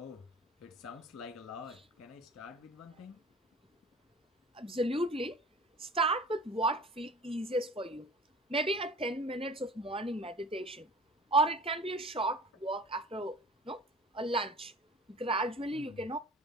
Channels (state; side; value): normal; both; correlation 0.42